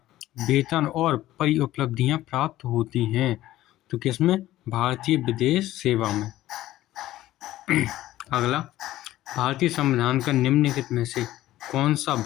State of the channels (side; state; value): right; quieter; 15.0 dB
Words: वेतन और परिउपलब्धियां प्राप्त होती हैं? तो किसमें? भारतीय विदेश सेवा में। अगला, भारतीय संविधान का निम्नलिखित में से कौन सा